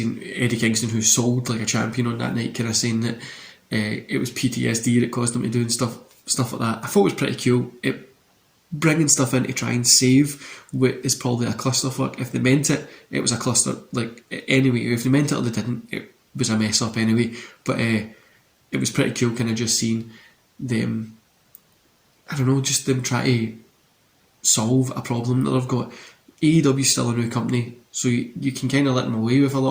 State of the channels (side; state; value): both; identical; correlation 1.00